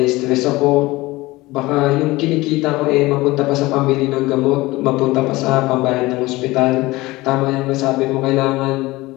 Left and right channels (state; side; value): quieter; right; 20.0 dB